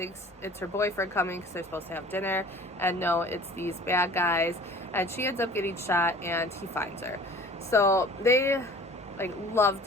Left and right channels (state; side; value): normal; both; correlation 0.46